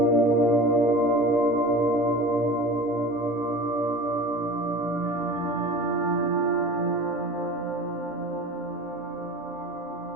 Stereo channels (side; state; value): both; normal; correlation 0.35